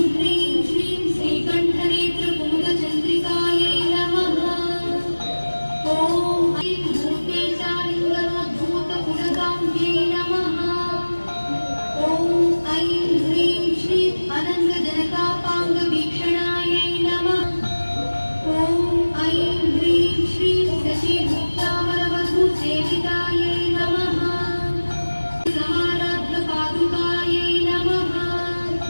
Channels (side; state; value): both; inverted; correlation -1.00